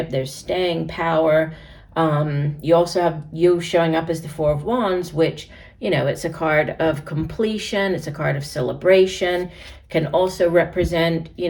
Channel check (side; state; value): both; identical; correlation 1.00